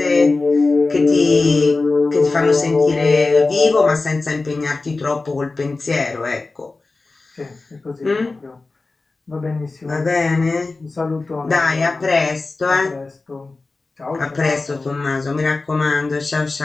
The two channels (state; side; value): quieter; right; 3.6 dB